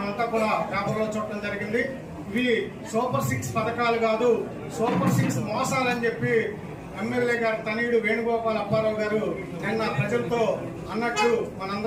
కూడా పేపర్లో చూడటం జరిగింది. ఇవి సూపర్ 6 పథకాలు కాదు, సూపర్ 6 మోసాలని చెప్పి ఎమ్మెల్యే గారు తనయుడు వేణుగోపాల్ అప్పారావు గారు నిన్న ప్రజలతో అన్నట్లు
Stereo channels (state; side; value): identical; both; correlation 1.00